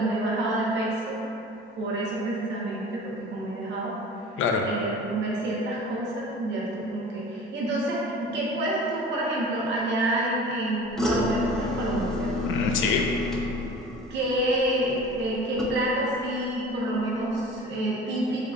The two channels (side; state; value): both; normal; correlation 0.41